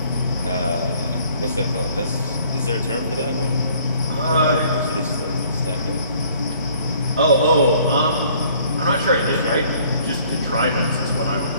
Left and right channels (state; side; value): inverted; both; correlation -0.58